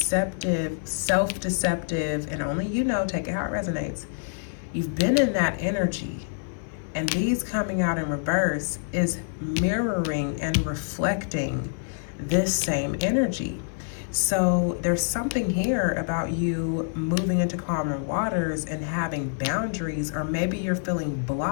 self-deceptive, and only you know, take it how it resonates. You've been in that energy, and these coming out in reverse is mirroring and reflecting this same energy. So there's something here about you moving into calmer waters and having boundaries, or maybe you're feeling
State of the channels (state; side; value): silent; right; 56 dB below the other